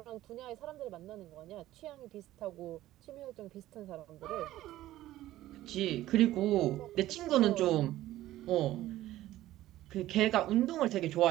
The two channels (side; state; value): left; quieter; 14.9 dB